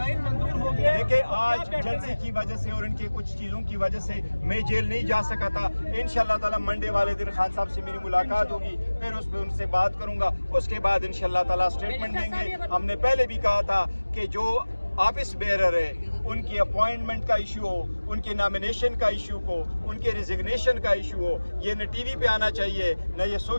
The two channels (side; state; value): both; inverted; correlation -1.00